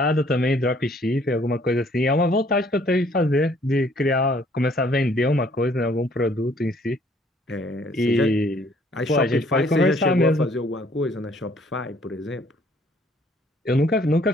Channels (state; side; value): normal; both; correlation 0.61